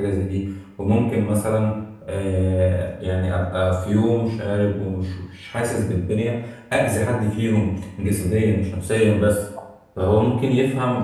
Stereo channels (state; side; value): identical; both; correlation 1.00